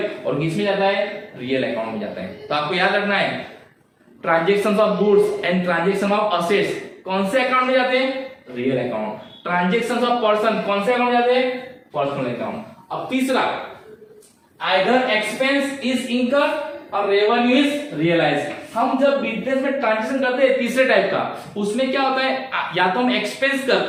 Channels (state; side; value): identical; both; correlation 1.00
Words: और किसमें जाता है? रियल अकाउंट में जाता है. तो आपको याद रखना है transaction of goods and transaction of assets कौन से अकाउंट में जाते हैं? Real account. Transaction of person कौन से अकाउंट में जाते हैं? Personal account. अब तीसरा, आइदर एक्सपेंस इज इनकर्ड और रेवेन्यू इज रियलाइज्ड. हम जब बिजनेस में ट्रांजेक्शन करते हैं तीसरे टाइप का, उसमें क्या होता है? या तो हम एक्सपेंस